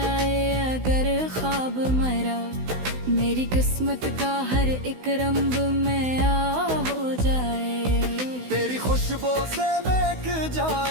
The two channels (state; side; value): late; left; 16 ms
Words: अगर ख्वाब मरा, मेरी किस्मत का हर एक रंग में आ हो जाए। तेरी खुशबू से महक